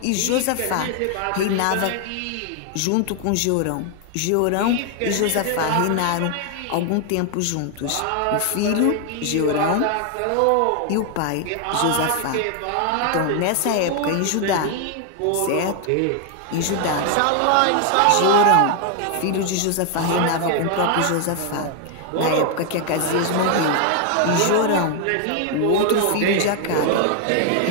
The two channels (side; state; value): both; different; correlation 0.00